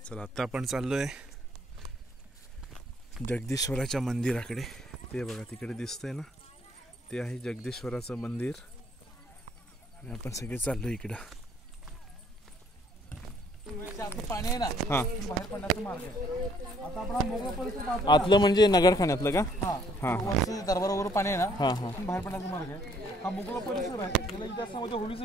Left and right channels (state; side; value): normal; both; correlation 0.64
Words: चला आता आपण चाललोय जगदीश्वराच्या मंदिराकडे. ते बघा तिकडे दिसतंय ना, ते आहे जगदीश्वराचं मंदिर आणि आपण सगळे चाललो इकडं. पाणी आहे ना, हा बाहेर पडण्याचा मार्ग आहे. आता आपण मोकळा परिसर आतलं म्हणजे नगरखान्यातलं का? हा दरबारावर पाणी आहे ना, हा हा बाहेर पडण्याचा मार्ग आहे. हा मोकळा परिसर आहे. त्याला इतिहासामध्ये होळीचं